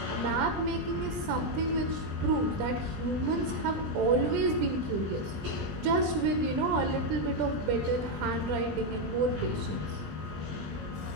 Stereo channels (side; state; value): left; late; 20 ms